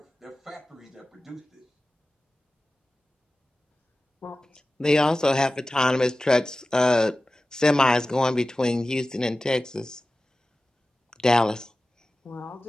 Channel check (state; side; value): normal; both; correlation 0.96